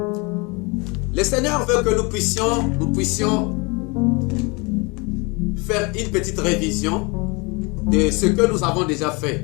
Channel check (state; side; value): quieter; right; 28.5 dB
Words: Seigneur veut que nous puissions faire une petite révision de ce que nous avons déjà